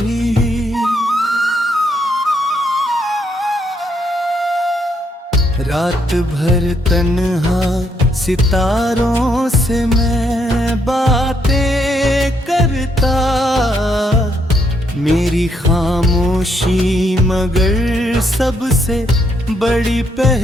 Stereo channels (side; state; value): both; normal; correlation 0.74